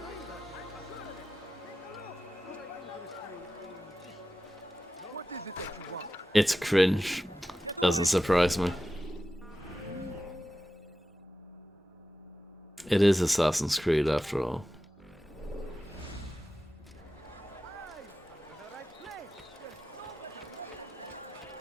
It's cringe. Doesn't surprise me. It is Assassin's Creed after all.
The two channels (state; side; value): normal; both; correlation 0.92